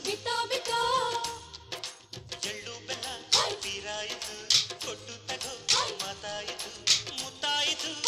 ಬಿಟೋ ಬಿಟೋ ಎಳ್ಳು ಬೆಲ್ಲ ತೀರಾಯಿತು ಕೊಟ್ಟು ತಗೋ ಮಾತಾಯಿತು ಮುತ್ತಾಯಿತು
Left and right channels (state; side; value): identical; both; correlation 1.00